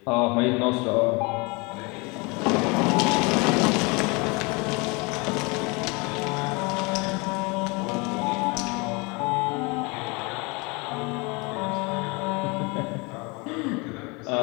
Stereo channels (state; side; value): quieter; right; 28.3 dB